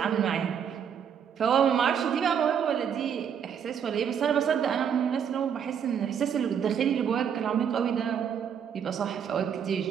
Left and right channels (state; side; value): quieter; left; 7.9 dB